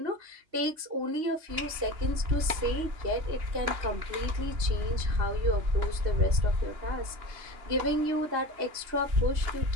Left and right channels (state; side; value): late; left; 2.8 ms